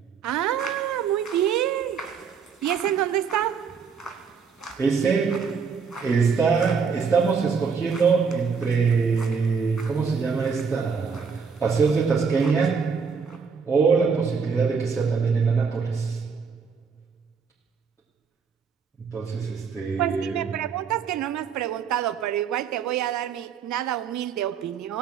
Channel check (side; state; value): left; quieter; 5.9 dB